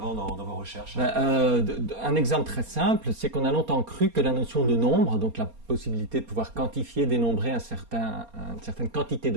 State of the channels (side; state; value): left; late; 4.3 ms